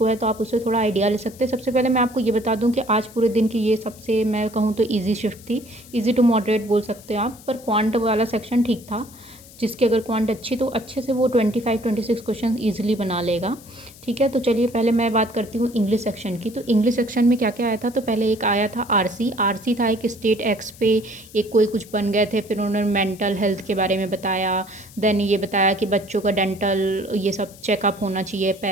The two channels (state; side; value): noise; left; hiss, 21 dB below the sound